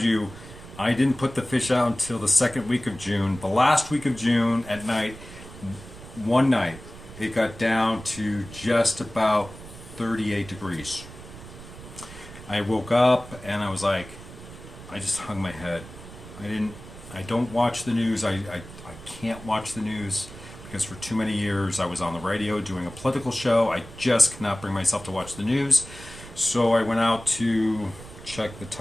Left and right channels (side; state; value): right; noise; rumble, 16 dB below the sound